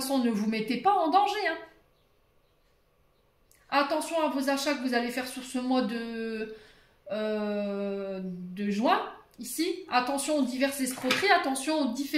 ne vous mettez pas en danger. Hein. Attention à vos achats que vous allez faire sur ce mois de juin. Ici, attention aux diverses escroqueries, attention aux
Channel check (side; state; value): both; identical; correlation 1.00